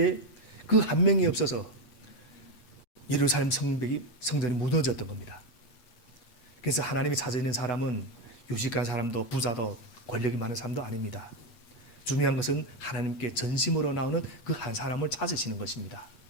그 한 명이 없어서 예루살렘 성전이 무너졌던 겁니다. 그래서 하나님이 찾아있는 사람은 유식한 사람도 부자도 권력이 많은 사람도 아닙니다. 중요한 것은 하나님께 전심으로 나오는 그 한 사람을 찾으시는 것입니다.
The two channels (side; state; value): right; late; 8.4 ms